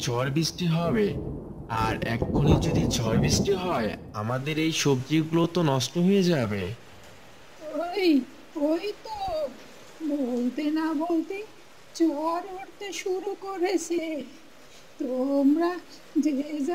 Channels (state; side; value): identical; both; correlation 1.00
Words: ঝড় বৃষ্টি হবে। আর এক্ষুনি যদি ঝড় বৃষ্টি হয় আমাদের এই সবজিগুলো তো নষ্ট হয়ে যাবে। ওই ওই তো বলতে না বলতে ঝড় উঠতে শুরু করেছে। তোমরা যে